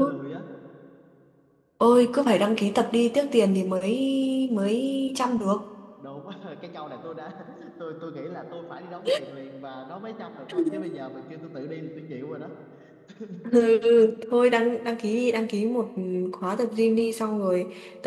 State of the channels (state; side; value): identical; both; correlation 1.00